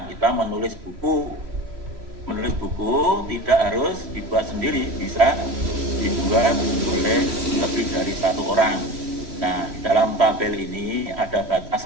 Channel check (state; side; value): late; left; 3.1 ms